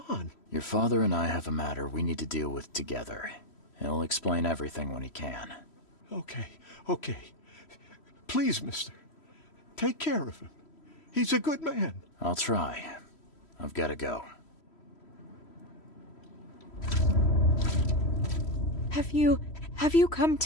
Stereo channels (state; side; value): late; right; 3.1 ms